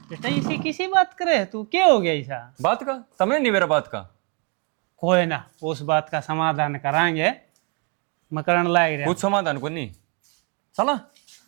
बेटा इसी किसी बात करे तू क्या हो गया ऐसा बात का तमने नहीं मेरा बात का कोई ना उस बात का समाधान करांगे मकरण लाग रहा कुछ समाधान को नहीं चला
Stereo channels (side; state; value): left; quieter; 35.8 dB